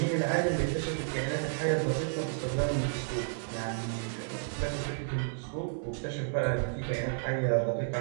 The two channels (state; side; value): silent; left; digital silence